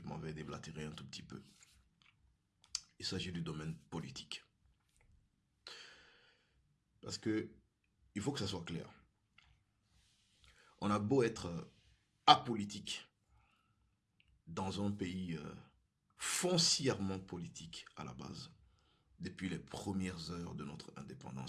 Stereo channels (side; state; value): both; identical; correlation 1.00